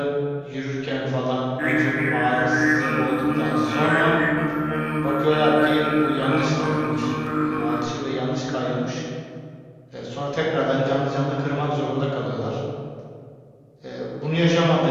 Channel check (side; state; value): both; identical; correlation 1.00